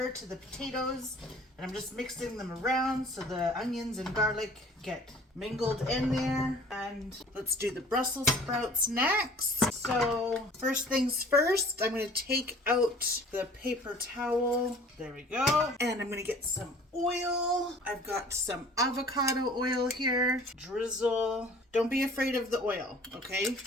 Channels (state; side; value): normal; both; correlation 0.49